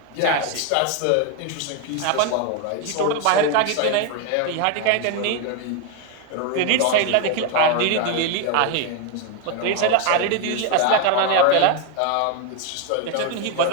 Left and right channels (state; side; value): different; both; correlation 0.01